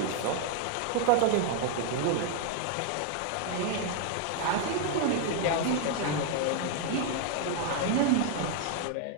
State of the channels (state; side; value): different; both; correlation 0.00